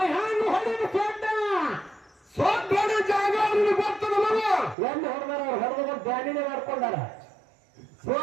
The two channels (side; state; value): left; drops out; at 4.8 s